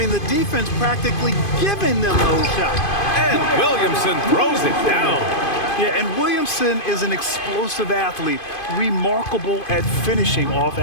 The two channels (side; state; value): right; late; 2.5 ms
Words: the defense practically giving them those shots. And Williamson throws it down. Yeah, and Williamson is an explosive athlete, remarkable at finishing off